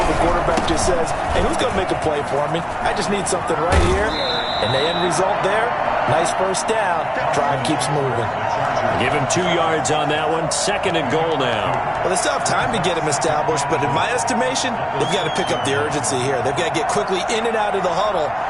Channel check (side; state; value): both; identical; correlation 1.00